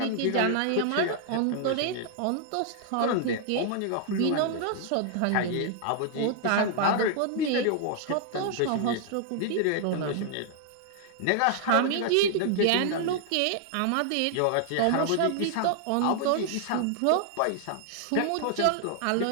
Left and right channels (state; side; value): different; both; correlation 0.00